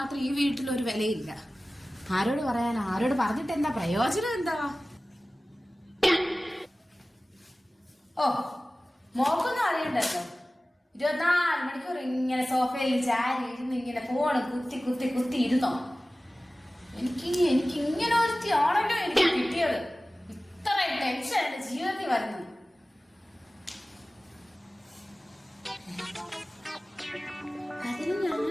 ഈ വീട്ടിൽ ഒരു വിലയില്ല. ആരോട് പറയാനാ? ആരോട് പറഞ്ഞിട്ട് എന്താ പ്രയോജനം? എന്താ? ഓ, മോക്കൊന്നും അറിയണ്ടല്ലോ. 24 മണിക്കൂർ ഇങ്ങനെ സോഫയിൽ ചാരി ഇരുന്ന് ഇങ്ങനെ ഫോണ് കുത്തി കുത്തി കുത്തി ഇരുന്നോ? എനിക്ക് ഇങ്ങനെ ഒരുത്തി ആണല്ലോ എനിക്ക് കിട്ടിയത്. ഇത്രയും ടെൻഷൻ എന്റെ ജീവിതത്തിൽ വരുന്നത്. അതിന്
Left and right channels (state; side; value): normal; both; correlation 0.97